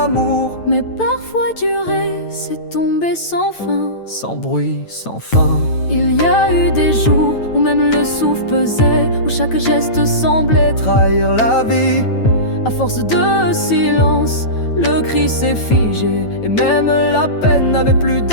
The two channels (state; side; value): late; right; 9.1 ms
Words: Mais parfois durer, c'est tomber sans fin, sans bruit, sans fin. Il y a eu des jours où même le souffle pesait, où chaque geste semblait trahir la vie. À force de silence, le cri s'est figé, et même la peine n'avait plus